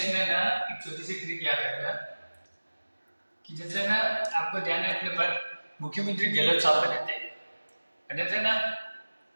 ना एक छोटी सी ट्रिक याद रखना कि जैसे ना आपको ध्यान है, अपने पर मुख्यमंत्री गहलोत साहब बने थे ना,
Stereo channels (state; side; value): inverted; both; correlation -1.00